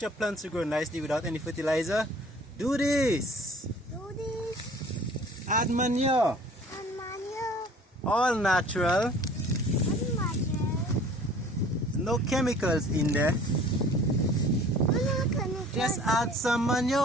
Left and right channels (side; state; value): both; normal; correlation 0.50